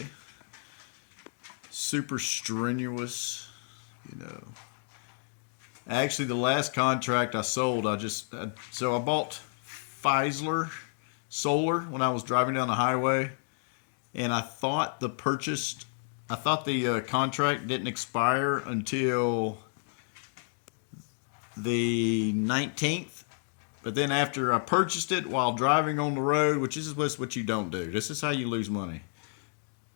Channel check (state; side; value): silent; right; 57 dB below the other